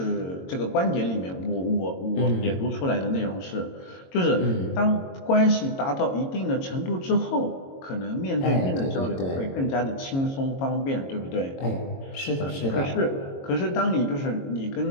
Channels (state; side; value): late; right; 22 ms